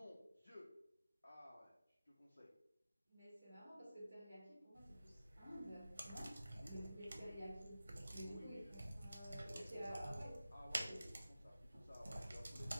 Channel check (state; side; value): inverted; both; correlation -0.95